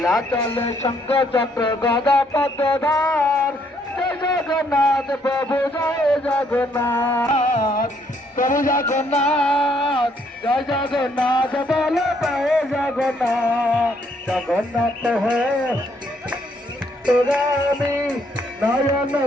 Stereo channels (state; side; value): normal; both; correlation 0.70